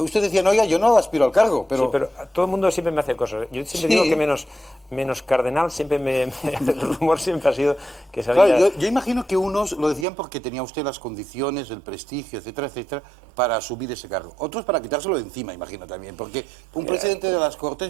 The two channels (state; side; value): drops out; left; at 10.1 s